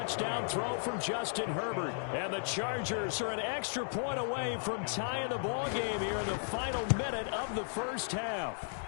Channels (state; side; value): silent; right; digital silence